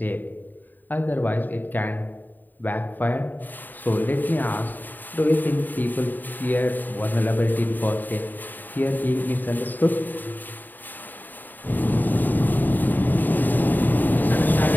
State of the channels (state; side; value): late; right; 0.088 ms